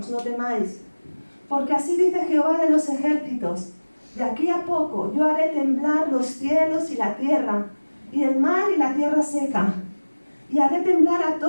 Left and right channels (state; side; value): inverted; both; correlation -1.00